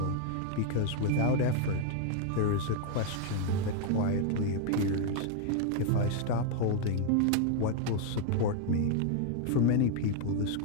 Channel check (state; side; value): different; both; correlation 0.00